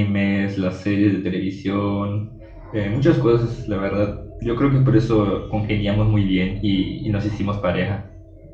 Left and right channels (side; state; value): both; identical; correlation 1.00